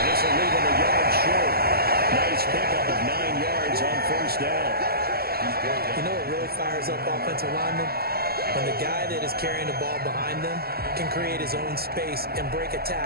this will leave him a yard short. Nice pickup of 9 yards on first down. You know what really fires up offensive linemen? When the guy that is carrying the ball behind them can create his own space and break a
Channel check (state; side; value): late; left; 0.45 ms